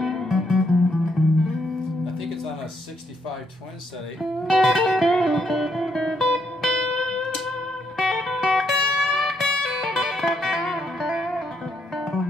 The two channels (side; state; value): both; normal; correlation 0.75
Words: I think it's on a 65 twin setting.